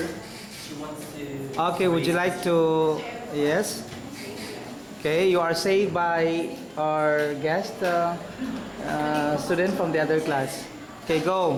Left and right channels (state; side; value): identical; both; correlation 1.00